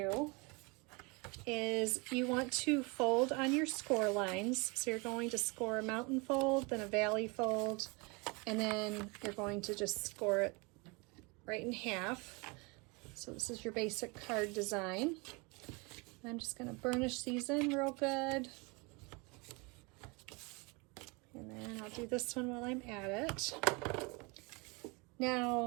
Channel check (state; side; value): quieter; left; 28.8 dB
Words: is you want to fold on your score lines. So you're going to score a mountain fold, then a valley fold, and then you're going to just score it right in half. So this is your basic card design. I'm just going to burnish these in real good. then I'll do this one while I'm at it.